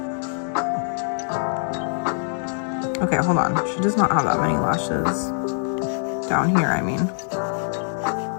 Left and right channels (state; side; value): silent; right; digital silence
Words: Okay, hold on. She does not have that many lashes. Down here, I mean.